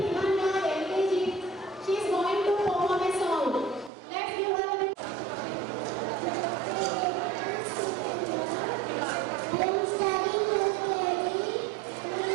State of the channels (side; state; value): left; drops out; at 3.9 s